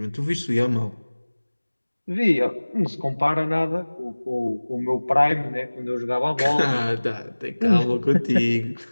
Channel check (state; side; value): inverted; both; correlation -1.00